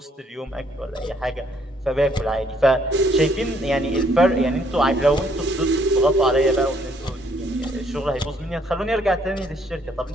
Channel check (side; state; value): both; normal; correlation 0.66